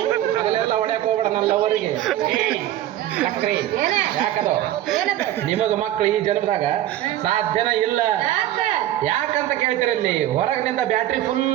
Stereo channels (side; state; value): left; quieter; 13.2 dB